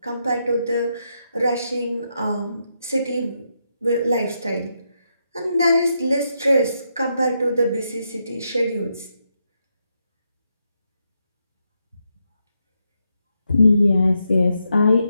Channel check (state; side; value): inverted; both; correlation -0.82